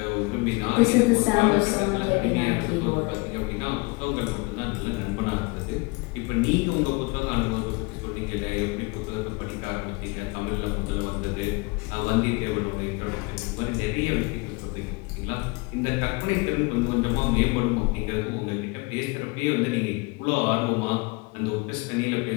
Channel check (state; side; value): quieter; right; 27.7 dB